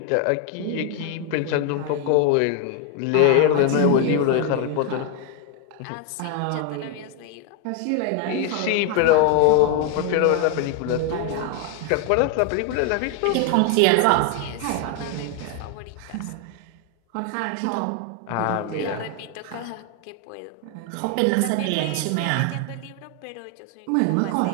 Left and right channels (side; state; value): both; different; correlation 0.01